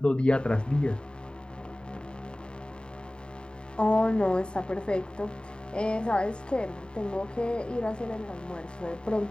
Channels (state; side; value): late; right; 0.050 ms